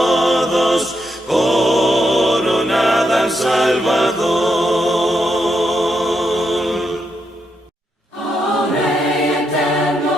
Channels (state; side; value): normal; both; correlation 0.81